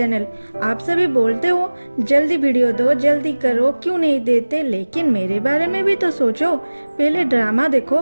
आप सभी बोलते हो जल्दी वीडियो दो, जल्दी करो, क्यों नहीं देते, लेकिन मेरे बारे में भी तो सोचो। पहले ड्रामा देखो,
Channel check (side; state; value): both; inverted; correlation -1.00